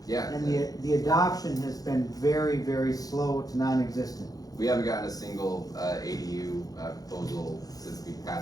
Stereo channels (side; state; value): right; late; 0.18 ms